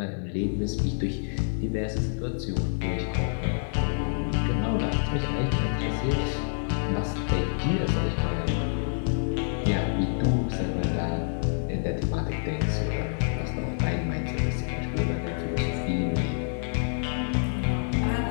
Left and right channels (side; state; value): right; silent; digital silence